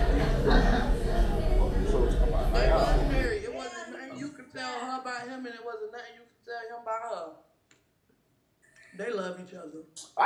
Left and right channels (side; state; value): both; identical; correlation 1.00